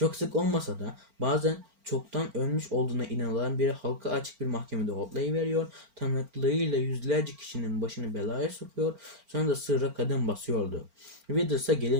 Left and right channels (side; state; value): left; late; 4.4 ms